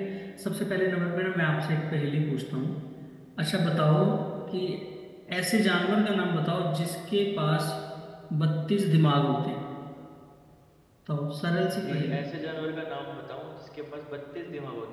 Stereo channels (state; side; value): identical; both; correlation 1.00